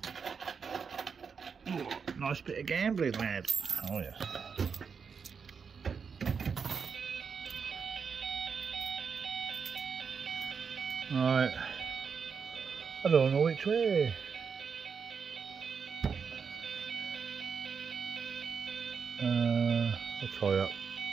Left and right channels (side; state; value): left; quieter; 6.0 dB